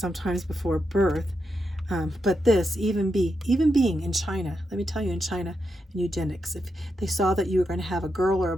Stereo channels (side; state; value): both; normal; correlation 0.85